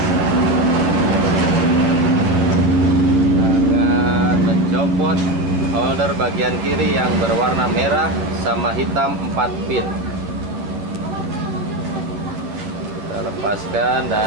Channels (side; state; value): left; late; 10 ms